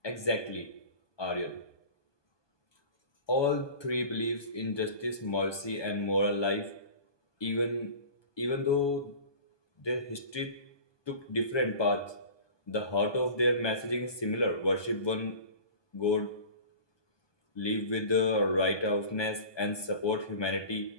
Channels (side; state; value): right; late; 1.2 ms